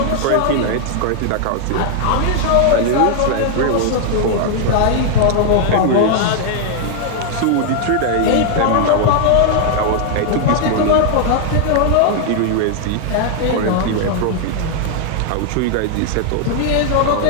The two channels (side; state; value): both; different; correlation 0.00